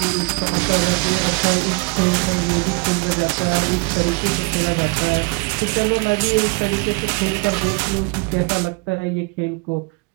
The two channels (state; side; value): quieter; left; 28.6 dB